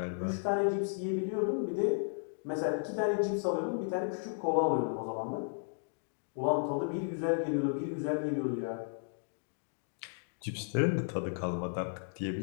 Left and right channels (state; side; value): silent; right; digital silence